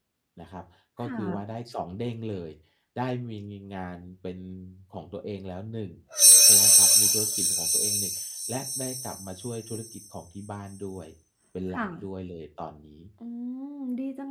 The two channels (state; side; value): identical; both; correlation 1.00